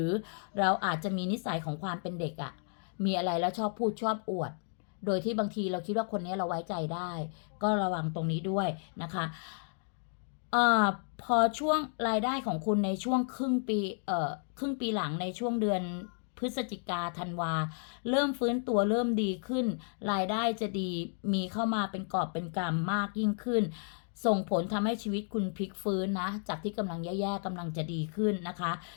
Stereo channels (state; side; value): silent; right; 56 dB below the other